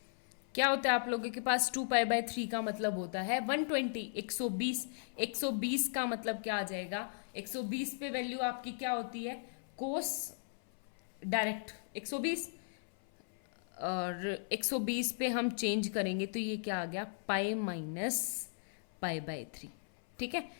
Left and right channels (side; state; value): right; silent; 53 dB below the other